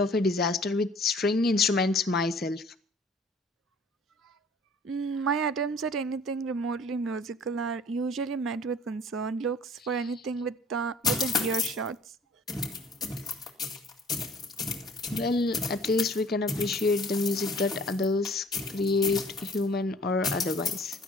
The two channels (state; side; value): normal; both; correlation 0.52